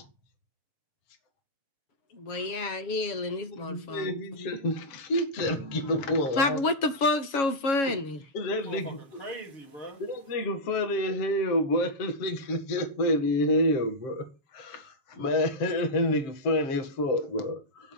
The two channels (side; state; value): right; late; 7.2 ms